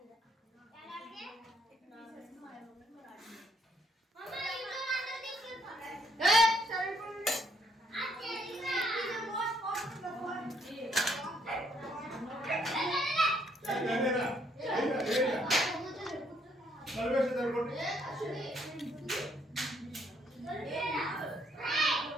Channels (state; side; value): normal; both; correlation 0.69